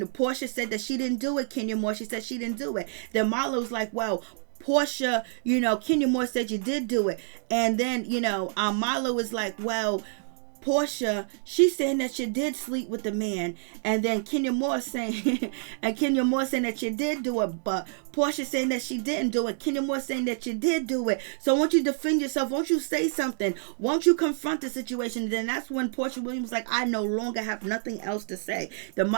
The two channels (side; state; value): left; silent; 60 dB below the other